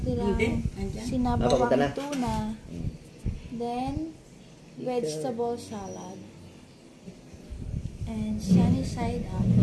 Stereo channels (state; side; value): identical; both; correlation 1.00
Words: sinabawang tuna. Then vegetable salad. And sunny side up.